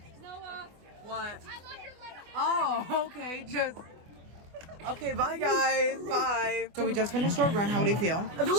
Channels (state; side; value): late; left; 24 ms